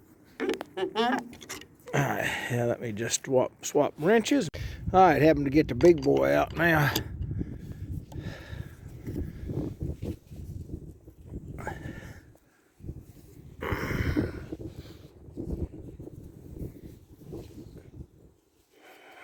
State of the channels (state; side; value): identical; both; correlation 1.00